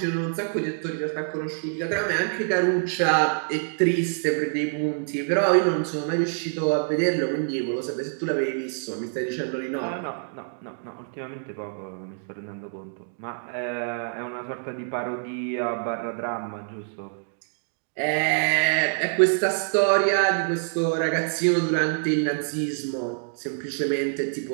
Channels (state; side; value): silent; left; 61 dB below the other